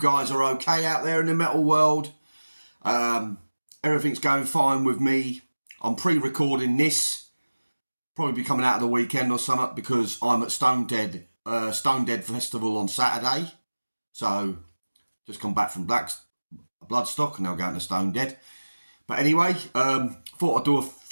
are okay out there in the metal world. Everything's going fine with me. I'm pre-recording this. Probably be coming out of the weekend or something because I'm at Stone Dead Festival on Saturday. So, just come back from Bloodstock and now going to Stone Dead. But anyway, thought I'd do a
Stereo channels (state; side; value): inverted; both; correlation -1.00